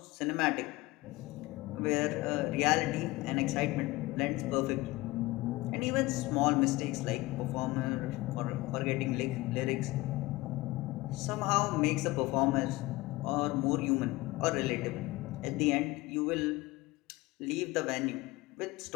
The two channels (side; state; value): right; quieter; 20.3 dB